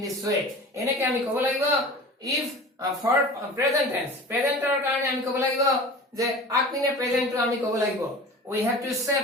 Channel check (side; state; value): both; normal; correlation 0.37